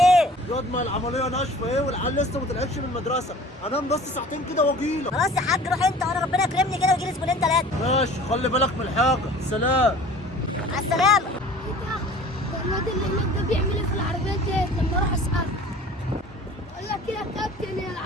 ياض ما العمليه ناشفه ايه والعيال لسه ما طلعتش من المدرسه، انام بس ساعتين كده واجيلك. خلاص يا حاج روح انت وانا ربنا يكرمني كده ويجي لي زبونين 3. ماشي خلي بالك من الحاجه. سلام. مع السلامه. ده الواد اللي هناك ده بيعمل ايه في العربيات ديت؟ لما اروح اساله اقول لك ايه يا كابتن، هي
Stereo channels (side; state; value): both; normal; correlation 0.45